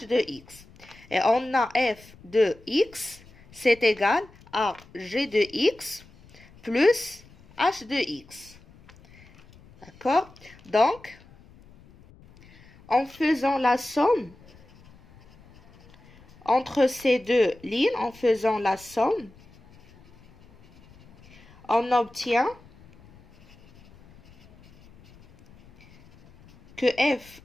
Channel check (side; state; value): left; noise; rumble, 25 dB below the sound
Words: de X. Et on a F de X, c'est égal à G de X plus H de X. D'accord? Donc, en faisant la somme entre ces deux lignes, en faisant la somme, on obtient que F